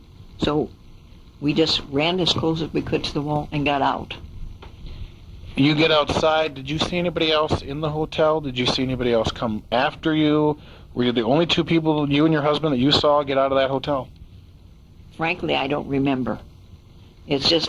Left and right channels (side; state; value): both; identical; correlation 1.00